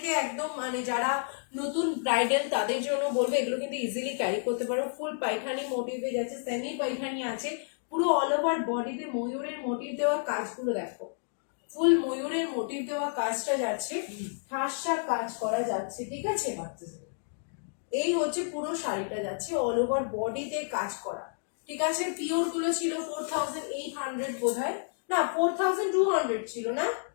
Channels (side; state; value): right; silent; digital silence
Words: একদম, মানে যারা নতুন ব্রাইডাল তাদের জন্য বলবো, এগুলো কিন্তু ইজিলি ক্যারি করতে পারো। ফুল পাইখানি মোটিভে যাচ্ছে, সেমি পাইখানি আছে, পুরো অল ওভার বডিতে ময়ূরের মোটিভ দেওয়া কাজগুলো দেখো, ফুল ময়ূরের মোটিভ দেওয়া কাজটা যাচ্ছে, ঠাসা কাজ করা যাচ্ছে, ঠিক আছে। এই হচ্ছে পুরো শাড়িটা যাচ্ছে অল ওভার বডিতে কাজ করা, ঠিক আছে। পিওর গুলো ছিল 4800 বোধহয়, না 4200 ছিল, না